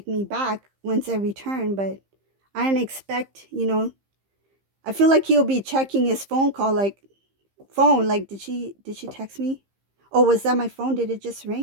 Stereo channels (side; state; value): left; late; 15 ms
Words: me back once I return, but I didn't expect, I feel like he'll be checking his phone, like did she text me? Oh, was that my phone? Did it just